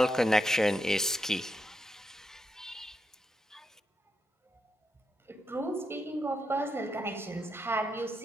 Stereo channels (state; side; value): normal; both; correlation 0.84